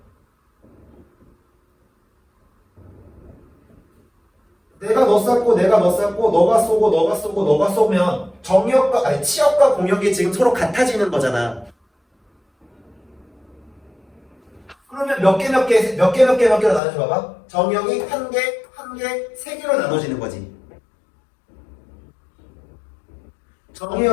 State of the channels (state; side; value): drops out; right; at 16.8 s